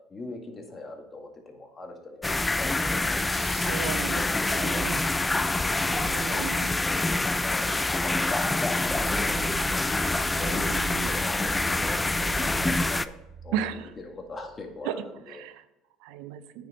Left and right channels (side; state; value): both; normal; correlation 0.90